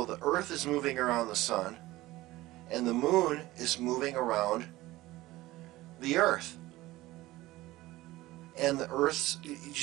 the Earth is moving around the sun, and the moon is moving around the Earth. And the Earth's, you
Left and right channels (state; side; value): quieter; left; 17.9 dB